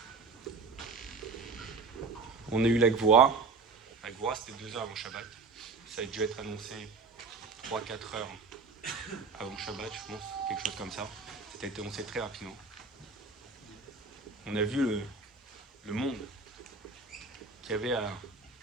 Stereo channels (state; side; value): quieter; left; 4.3 dB